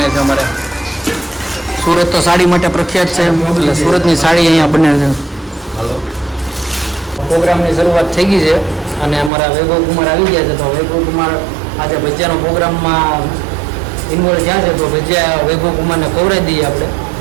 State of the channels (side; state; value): left; drops out; at 9.3 s